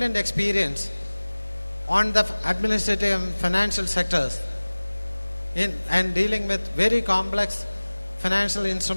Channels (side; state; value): both; inverted; correlation -1.00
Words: experience on the administrative and financial sectors and dealing with very complex financial